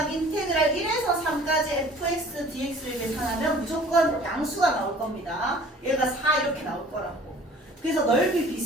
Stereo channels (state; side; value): normal; both; correlation 0.49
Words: 인테그랄 1에서 3까지 fx dx를 계산하면 무조건 양수가 나올 겁니다. 얘가 4 이렇게 나올 거라고. 그래서 넓이